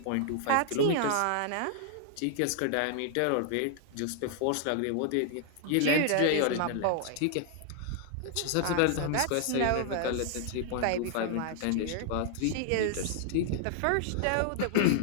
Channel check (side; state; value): both; different; correlation 0.00